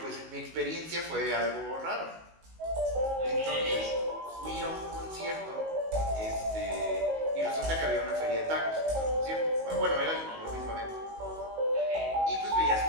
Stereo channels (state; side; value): late; left; 19 ms